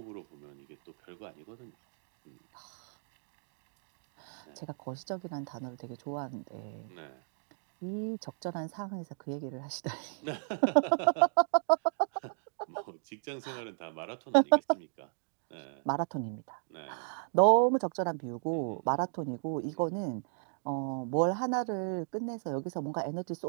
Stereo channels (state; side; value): silent; left; digital silence